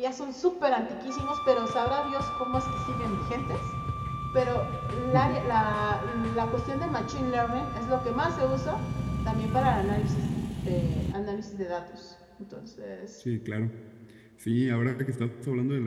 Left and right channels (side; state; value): both; identical; correlation 1.00